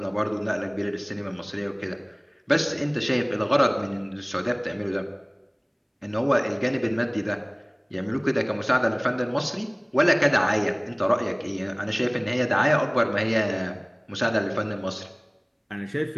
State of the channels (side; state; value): both; identical; correlation 1.00